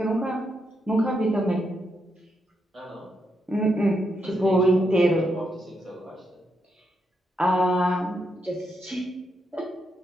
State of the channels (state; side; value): normal; both; correlation 0.81